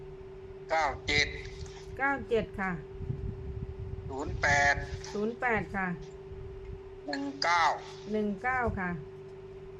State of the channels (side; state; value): both; identical; correlation 1.00